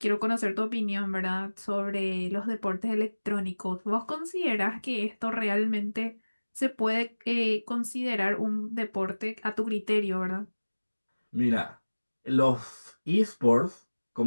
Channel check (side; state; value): both; inverted; correlation -1.00